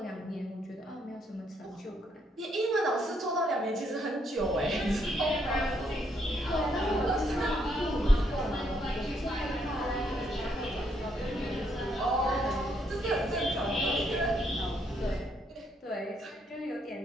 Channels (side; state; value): both; normal; correlation 0.73